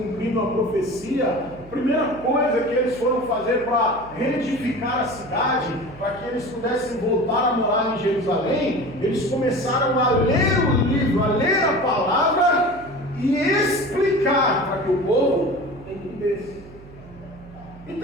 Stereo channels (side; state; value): right; noise; hum, 20 dB below the sound